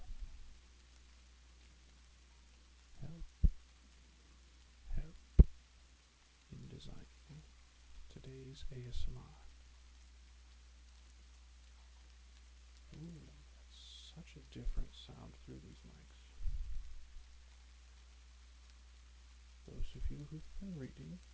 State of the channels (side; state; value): both; identical; correlation 1.00